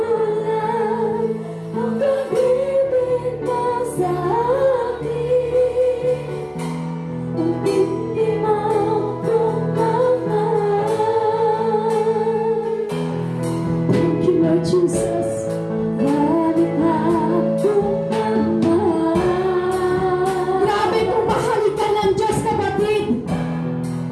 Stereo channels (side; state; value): both; identical; correlation 1.00